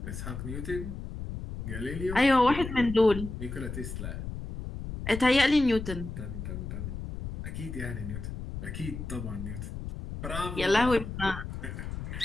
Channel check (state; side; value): noise; left; rumble, 7 dB below the sound